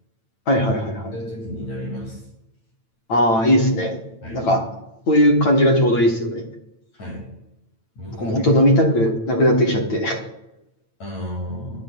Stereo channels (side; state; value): right; late; 9.0 ms